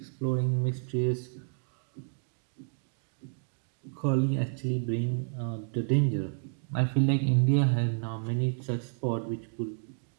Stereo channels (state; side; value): silent; left; digital silence